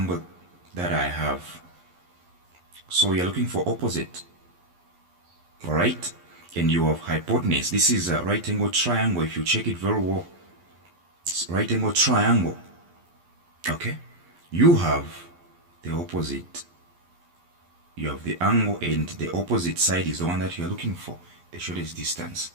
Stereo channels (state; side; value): late; left; 11 ms